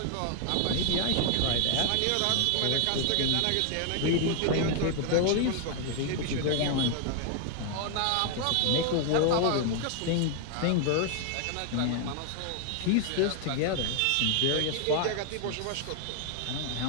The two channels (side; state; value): both; different; correlation 0.00